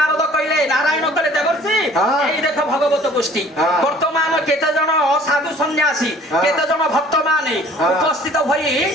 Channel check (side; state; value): both; normal; correlation 0.51